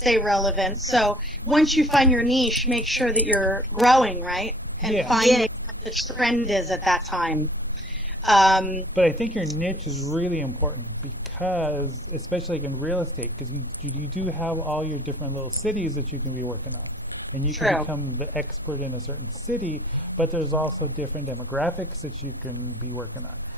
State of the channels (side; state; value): both; normal; correlation 0.54